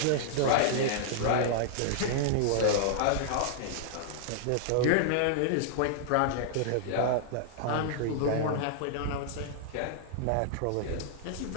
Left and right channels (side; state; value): both; different; correlation -0.01